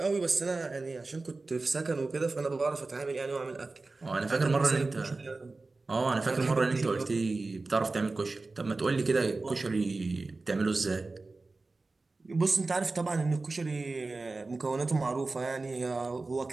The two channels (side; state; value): left; quieter; 3.5 dB